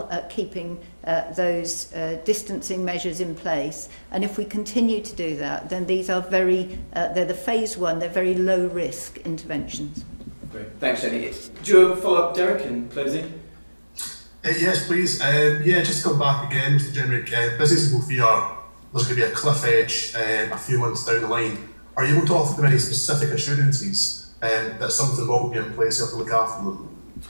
at keeping those distancing measures in place. And if we continue to do that, then these are they're the phase 1, they're very low risk interventions. Great. Thanks, Jenny. Do you have a follow-up, Derek, in closing? Yes, please. Just to come back again, Mr. Jenrick, businesses will fear there's going to be a cliff edge a few months down the line. Are you able to offer them any specific assurances that something will be in place to look after them?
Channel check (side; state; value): both; inverted; correlation -1.00